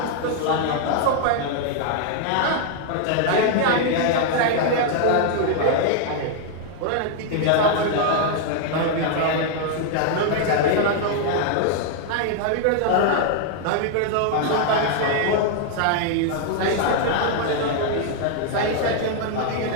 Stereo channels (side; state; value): both; different; correlation 0.00